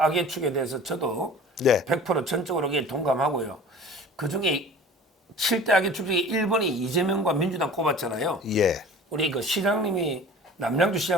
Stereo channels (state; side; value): normal; both; correlation 0.42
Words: 축에 대해서 저도 네. 100% 전적으로 동감하고요. 그중에 7대 악의 축 중에 1번이 이재명과 민주당 꼽았잖아요. 예. 우리 그 시장님이 남양주